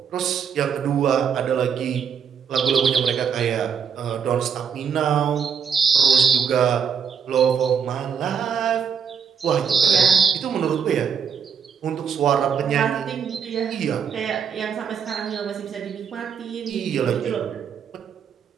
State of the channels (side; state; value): left; quieter; 7.0 dB